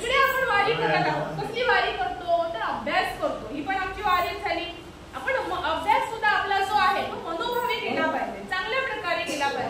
आपण वारी करत आहोत. कसली वारी करतो तर अभ्यास करतो. ही पण आमची वारी झाली. आपण अभ्यास सुद्धा आपला जो आहे तो मनोभावे केला पाहिजे, चांगल्या प्रकारे केला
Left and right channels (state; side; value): identical; both; correlation 1.00